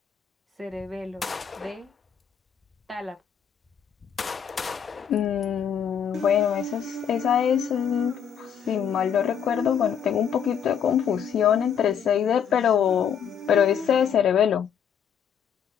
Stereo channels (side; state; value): right; quieter; 8.0 dB